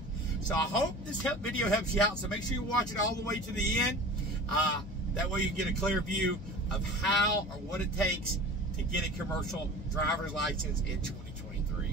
So I hope this video helps you out, so make sure you watch it all the way to the end. That way you can get a clear view of how or what it takes to get a commercial driver's license in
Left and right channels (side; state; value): both; normal; correlation 0.38